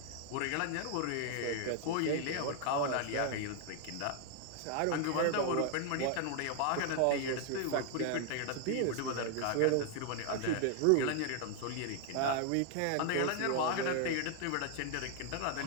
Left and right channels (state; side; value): different; both; correlation 0.00